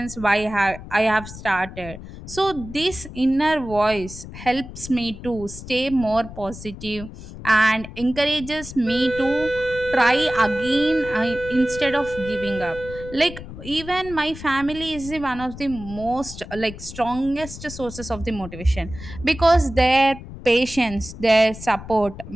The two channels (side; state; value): left; noise; rumble, 13 dB below the sound